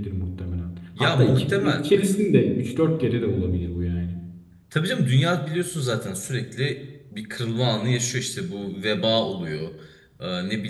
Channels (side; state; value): both; identical; correlation 1.00